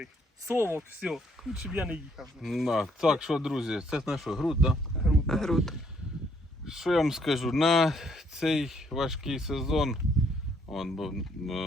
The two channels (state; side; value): normal; both; correlation 0.68